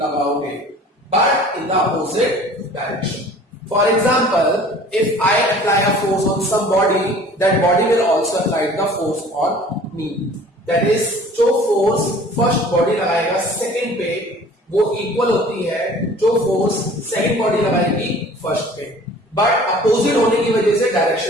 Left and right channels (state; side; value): normal; both; correlation 0.48